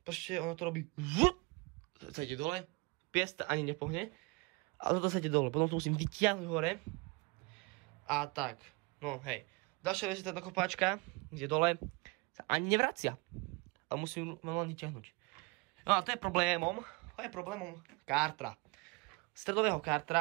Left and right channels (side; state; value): left; quieter; 27.1 dB